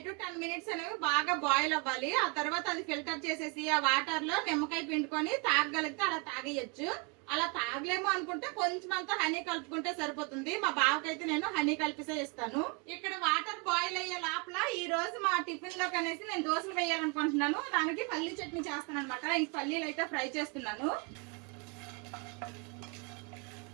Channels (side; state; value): left; quieter; 31.0 dB